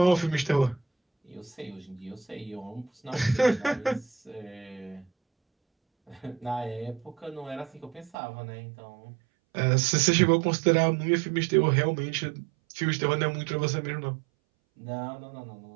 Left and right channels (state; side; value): drops out; left; at 8.2 s